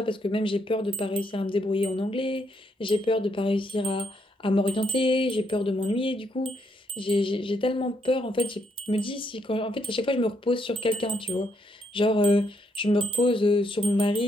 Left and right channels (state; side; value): normal; both; correlation 0.75